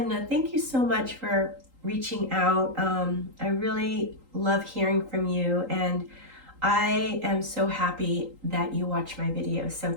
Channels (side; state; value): left; late; 3.8 ms